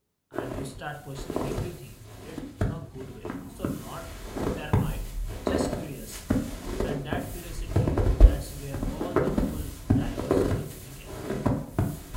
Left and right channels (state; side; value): identical; both; correlation 1.00